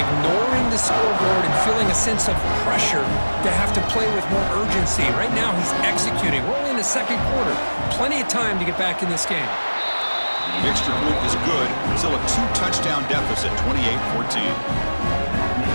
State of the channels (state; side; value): inverted; both; correlation -1.00